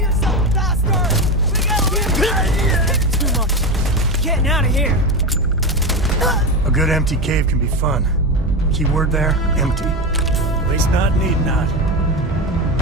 bastard! We gotta leave! Too much. Getting out of here. A good empty cave can be fun. Keyword there, empty. At least not need not.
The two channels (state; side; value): normal; both; correlation 0.18